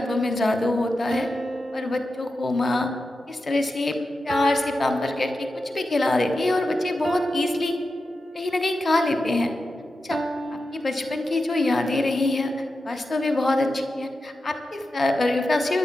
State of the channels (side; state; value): both; normal; correlation 0.90